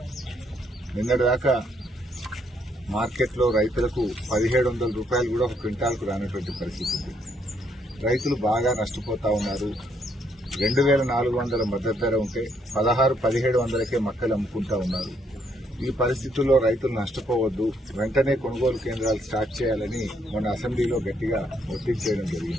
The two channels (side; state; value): both; normal; correlation 0.72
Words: నిన్నటిదాకా మార్కెట్లో రైతులకు 1700 రూపాయలు కూడా ఒక క్వింటాల్కు రానటువంటి పరిస్థితి ఉంది. రైతులు బాగా నష్టపోతా ఉన్నారు. 2400 మద్దతు ధర ఉంటే 1600-1700కే మొక్కలు అమ్ముకుంటా ఉన్నారు. ఈ పరిస్థితుల్లో రైతులు నష్టపోవద్దు, వెంటనే కొనుగోలు కేంద్రాలు స్టార్ట్ చేయాలని మొన్న అసెంబ్లీలో గట్టిగా ఒత్తిడి చేయడం